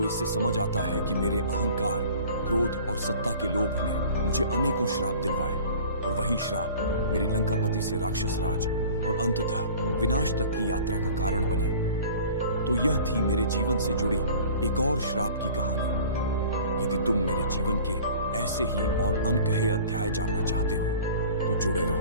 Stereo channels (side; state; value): both; inverted; correlation -0.44